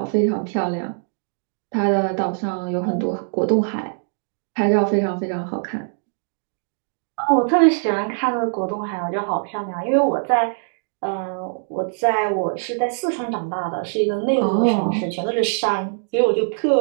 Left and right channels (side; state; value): left; silent; digital silence